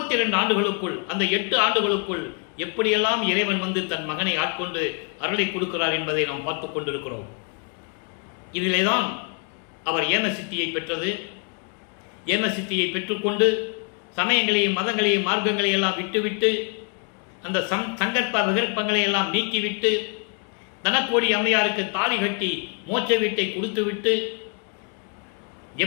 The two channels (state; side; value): quieter; right; 38.4 dB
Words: ஆண்டுகளுக்குள், அந்த 8 ஆண்டுகளுக்குள் எப்படியெல்லாம் இறைவன் வந்து தன் மகனை ஆட்கொண்டு அருளை கொடுக்கிறார் என்பதை நாம் பார்த்துக் கொண்டிருக்கிறோம். இதிலேதான் அவர் ஏம சித்தியை பெற்றது. ஏம சித்தியை பெற்றுக்கொண்டு சமயங்களையும் மதங்களையும் மார்க்கங்களை எல்லாம் விட்டுவிட்டு அந்த சங்கற்ப விகற்பங்களை எல்லாம் நீக்கிவிட்டு தனக்கோடி அம்மையாருக்கு தாலி கட்டி மோட்ச வீட்டை கொடுத்துவிட்டு